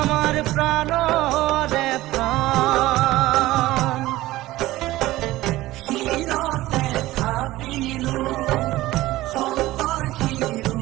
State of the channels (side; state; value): left; quieter; 17.1 dB